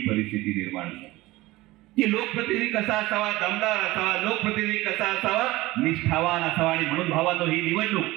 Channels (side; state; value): left; quieter; 19.1 dB